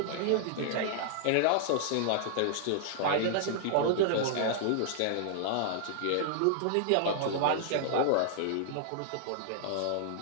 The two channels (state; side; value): different; both; correlation -0.01